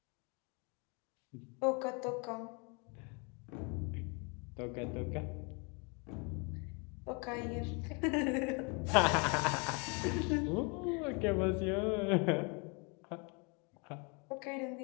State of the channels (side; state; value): right; quieter; 32.9 dB